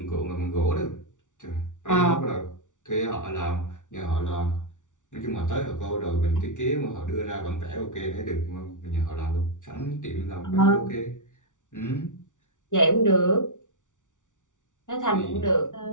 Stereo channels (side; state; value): right; late; 0.87 ms